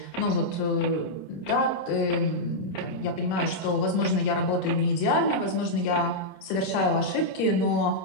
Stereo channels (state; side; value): late; right; 26 ms